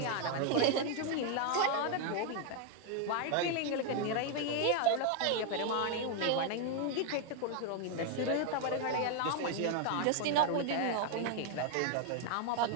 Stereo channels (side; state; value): both; different; correlation 0.01